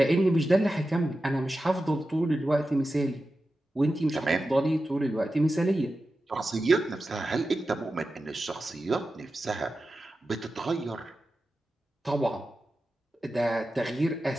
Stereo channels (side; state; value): both; normal; correlation 0.92